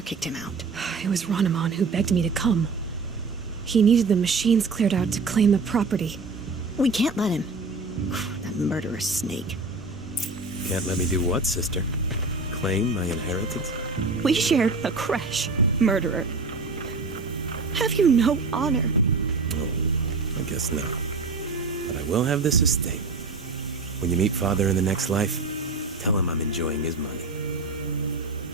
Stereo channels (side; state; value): left; quieter; 3.8 dB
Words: kicked him out. It was Rainaman who begged me to come. He needed the machines cleared out to claim the property. We can't let him. That murderous snake. Can't let me do what, sister? Claim my inheritance? We shared a creche, murderer. Have you no honor? Oh, I guess not. But I will have this estate. When you meet Father in the next life, tell him I'm enjoying his money.